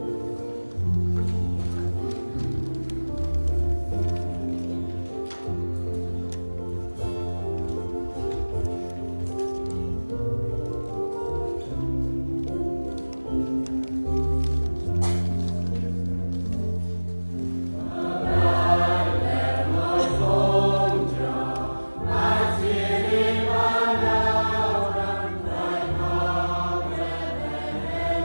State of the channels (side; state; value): both; inverted; correlation -1.00